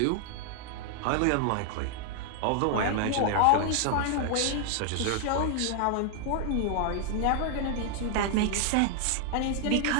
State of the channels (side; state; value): both; different; correlation 0.00